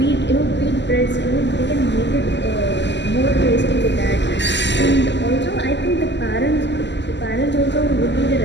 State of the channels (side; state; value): right; late; 0.51 ms